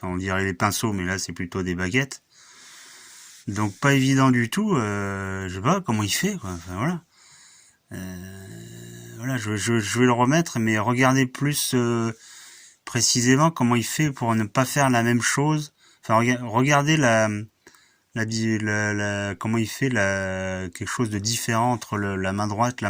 on dirait les pinceaux, mais là c'est plutôt des baguettes. Donc pas évident du tout. Je sais pas comment il fait, quoi. Enfin, voilà. Voilà, je vais le remettre, mais regardez plus précisément comment il fait pour ne pas faire la même chose. Enfin, regardez comment il fait quelque chose de différent entre la main droite et la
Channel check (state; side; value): identical; both; correlation 1.00